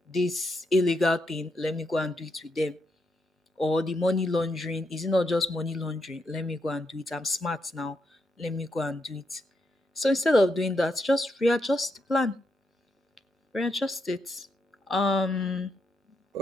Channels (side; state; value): both; normal; correlation 0.81